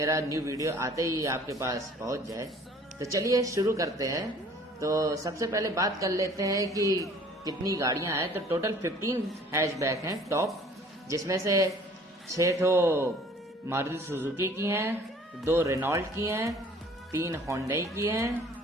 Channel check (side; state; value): both; normal; correlation 0.52